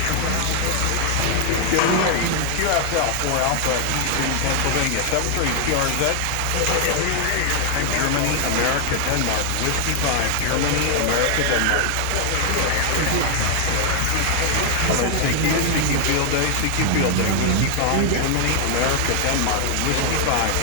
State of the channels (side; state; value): both; different; correlation 0.00